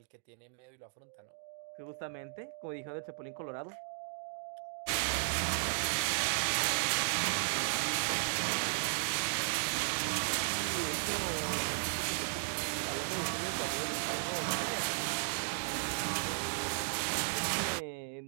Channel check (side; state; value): left; silent; digital silence